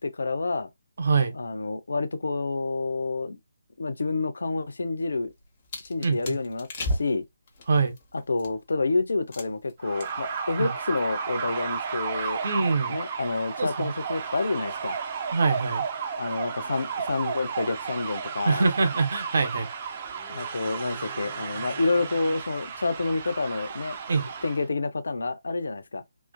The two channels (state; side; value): inverted; both; correlation -0.84